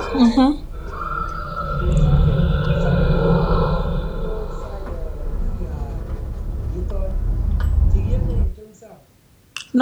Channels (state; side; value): identical; both; correlation 1.00